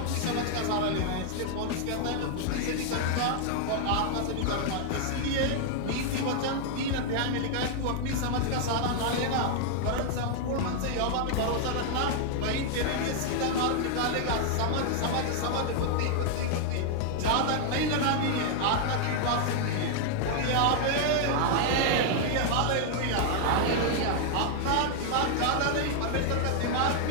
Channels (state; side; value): different; both; correlation -0.01